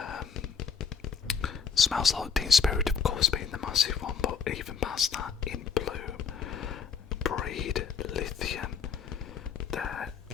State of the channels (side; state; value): right; quieter; 6.5 dB